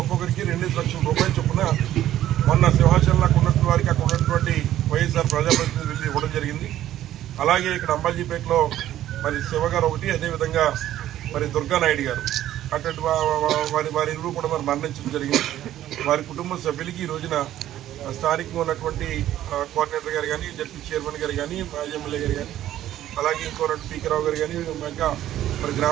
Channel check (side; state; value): left; quieter; 12.7 dB